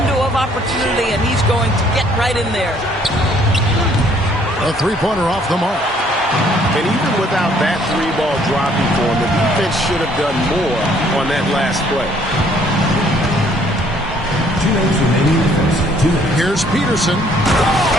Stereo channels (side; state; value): both; normal; correlation 0.62